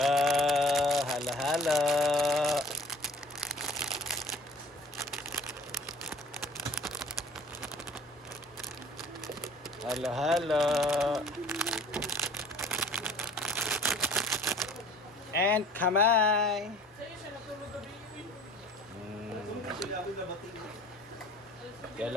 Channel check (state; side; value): normal; both; correlation 0.48